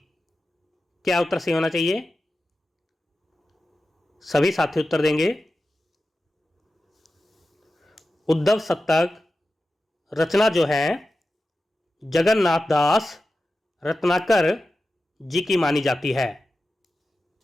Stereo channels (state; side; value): normal; both; correlation 0.93